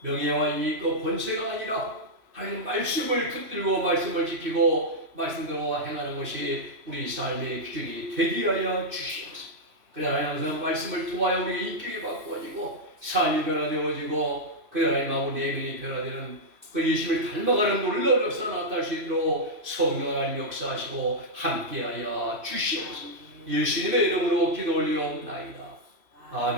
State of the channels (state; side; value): late; left; 3.0 ms